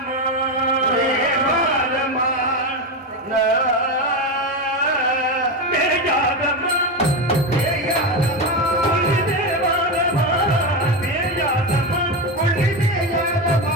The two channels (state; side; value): normal; both; correlation 0.15